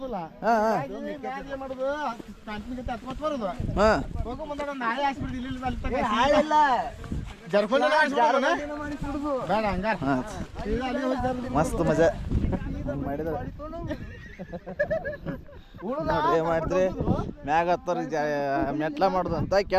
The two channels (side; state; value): both; identical; correlation 1.00